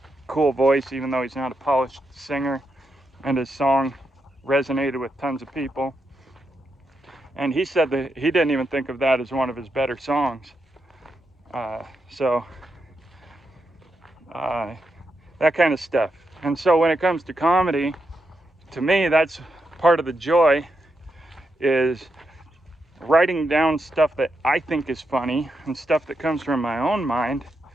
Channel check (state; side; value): normal; both; correlation 0.84